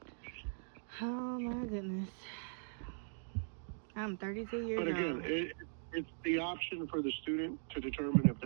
Oh my goodness. I'm 32 years old. But again, it's the option for the student to determine if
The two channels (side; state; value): left; silent; digital silence